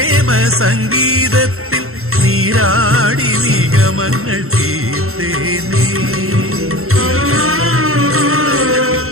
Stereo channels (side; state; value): left; late; 0.63 ms